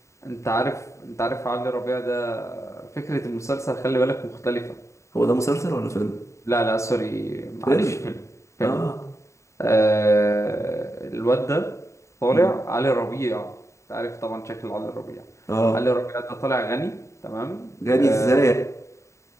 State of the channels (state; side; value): late; right; 0.14 ms